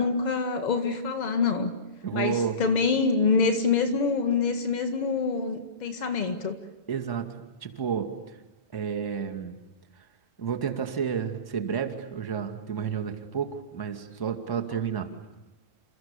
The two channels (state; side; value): late; right; 2.0 ms